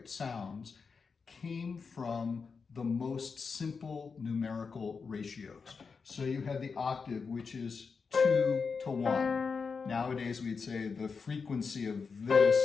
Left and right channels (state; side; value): quieter; right; 5.2 dB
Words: sounds came from the most simple numerical ratios. So you had the octave, which is 2 to 1. Nowadays we'd say the frequency of this